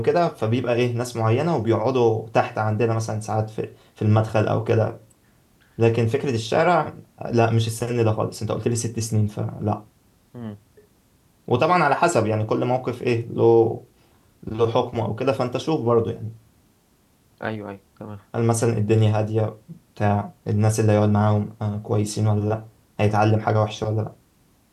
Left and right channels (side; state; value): both; identical; correlation 1.00